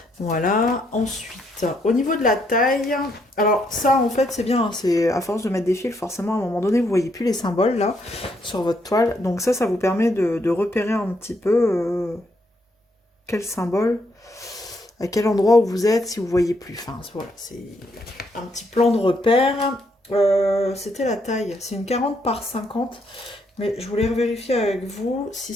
Voilà, ensuite, au niveau de la taille, alors ça en fait c'est bien, c'est à force de mettre des fils, forcément à un moment donné vous voyez plus les symboles là sur votre toile, donc ça vous permet de repérer un petit peu quel symbole, à quel endroit où vous êtes si vous voyez plus, enfin voilà, c'est un petit plan de repère. C'était la taille, c'est une 40 par 50, mais je voulais vérifier avec vous si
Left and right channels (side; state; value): both; normal; correlation 0.74